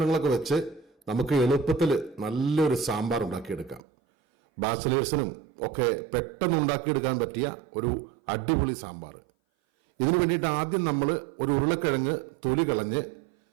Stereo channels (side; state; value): left; drops out; at 3.8 s